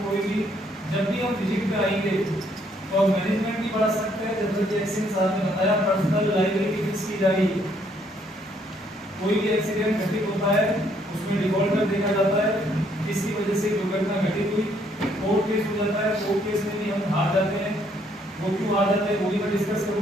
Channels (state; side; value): normal; both; correlation 0.68